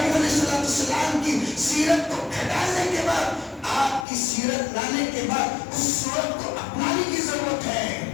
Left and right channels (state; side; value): drops out; right; at 4.0 s